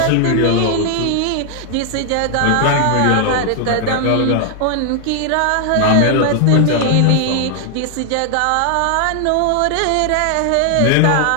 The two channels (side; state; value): both; different; correlation 0.00